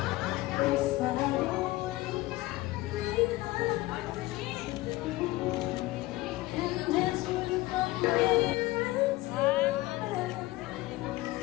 if I and that's what I'm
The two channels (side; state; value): right; quieter; 18.8 dB